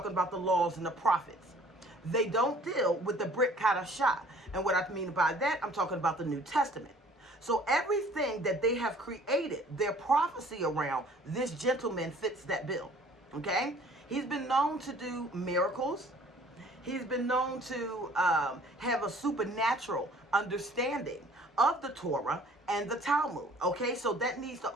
about the laws and the prophets. They don't deal with the Brit Kadashah. And what I mean by that, I'm talking about the New Testament. So everything that they have created, their prophecy around, this gentleman fits that bill, okay? He's been known to do miracles. He's been known to have a supernatural understanding of the Torah and the Talmud, okay? So that needs to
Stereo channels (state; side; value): normal; both; correlation 0.53